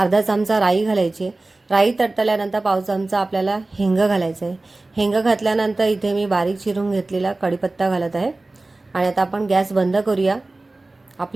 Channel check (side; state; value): left; quieter; 3.0 dB